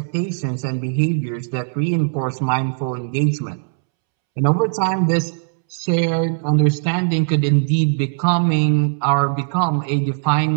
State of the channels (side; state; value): left; silent; 66 dB below the other